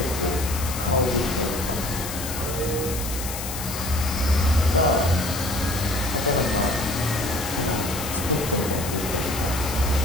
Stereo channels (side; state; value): left; noise; hiss, 7 dB below the sound